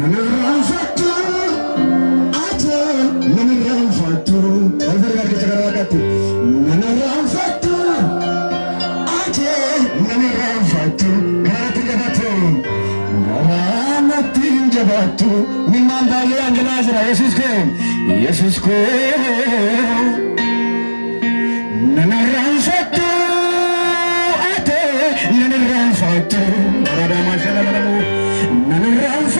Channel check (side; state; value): both; inverted; correlation -1.00